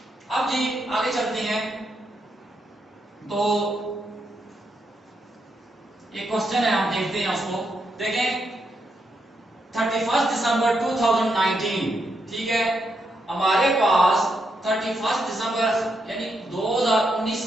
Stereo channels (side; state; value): both; normal; correlation 0.81